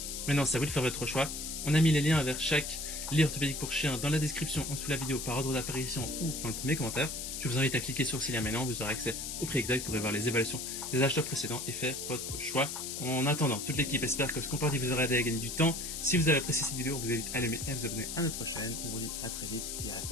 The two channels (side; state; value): left; noise; hiss, 5 dB below the sound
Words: Maintenant, c'est à vous de faire votre choix. On a mis les liens vers chaque lit orthopédique pour chien dans la description en dessous de la vidéo par ordre d'apparition ou dans le premier commentaire. Je vous invite à cliquer sur ces liens maintenant, vous aurez accès au prix exact pour voir les évaluations des acheteurs précédents et faire votre choix. En attendant, toute l'équipe espère que ce comparatif vous aura aidé à gagner du temps. Si vous avez apprécié cette vidéo, on vous invite à l'aimer et à vous abonner à notre chaîne. On vous dit à très vite et à la